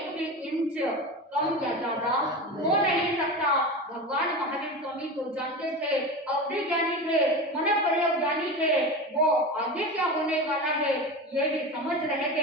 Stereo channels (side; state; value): both; normal; correlation 0.26